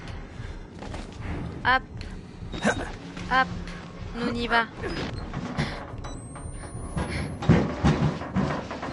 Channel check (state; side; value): identical; both; correlation 1.00